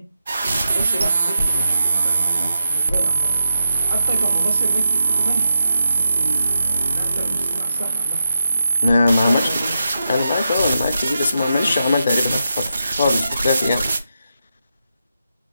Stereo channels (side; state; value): both; inverted; correlation -0.86